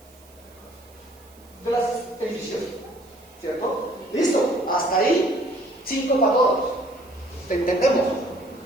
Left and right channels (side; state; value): right; noise; hiss, 27 dB below the sound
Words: De las edificios, ¿cierto? Listo, hasta ahí, 5 para todos. ¿Te entendemos?